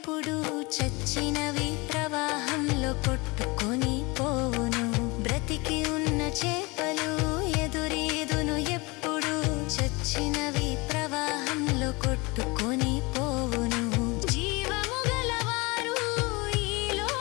చచ్చినవి ప్రవాహంలో కొట్టుకొని పోవును. బ్రతికి ఉన్న చేపలు ఎదురీదును ఎప్పుడు, చచ్చినవి ప్రవాహంలో కొట్టుకొని పోవును. జీవము గలవారు ఈ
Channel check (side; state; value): right; quieter; 25.7 dB